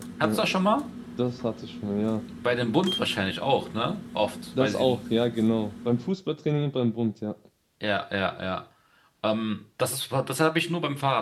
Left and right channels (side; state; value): both; identical; correlation 1.00